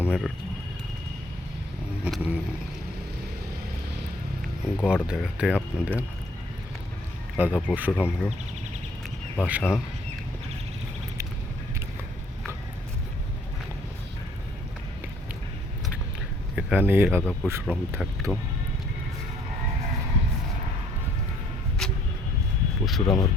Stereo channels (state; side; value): normal; both; correlation 0.61